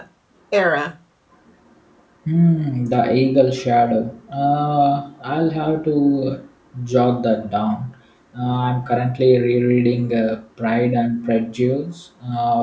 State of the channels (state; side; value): identical; both; correlation 1.00